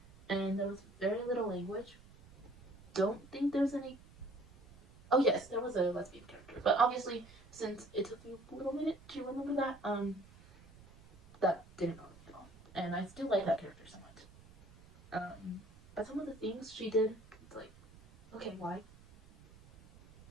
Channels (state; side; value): noise; right; rumble, 23 dB below the sound